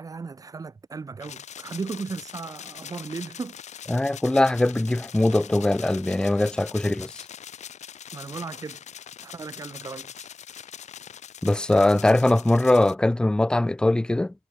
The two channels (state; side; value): normal; both; correlation 0.97